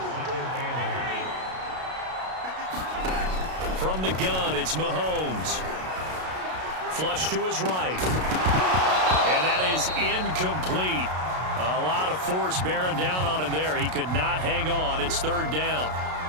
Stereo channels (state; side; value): late; left; 32 ms